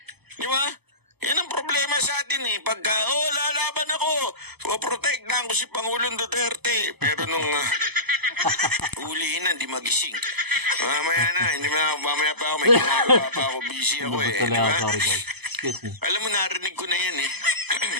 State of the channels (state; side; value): late; left; 0.98 ms